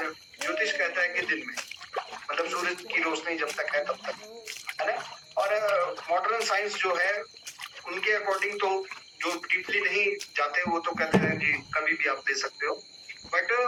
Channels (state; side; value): identical; both; correlation 1.00